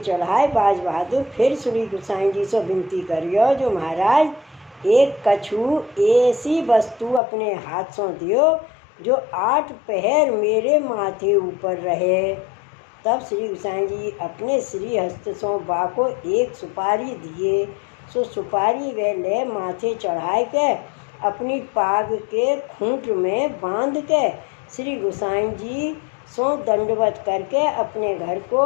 बाज बहादुर फिर श्री गोसाई जी से विनती करियो जो महाराज एक कछु ऐसी वस्तु अपने हाथ से दियो जो 8 पहर मेरे माथे ऊपर रहे। तब श्री गोसाई जी अपने श्री हस्त से बा को एक सुपारी दिए। सो सुपारी वे ले माथे चढ़ाए के अपनी पाग के खूंट में बांध के श्री गोसाई जी सो दंडवत करके अपने घर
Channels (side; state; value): right; drops out; at 7.2 s